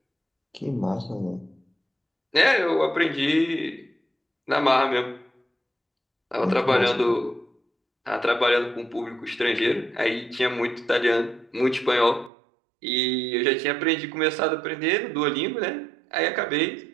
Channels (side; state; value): left; drops out; at 12.3 s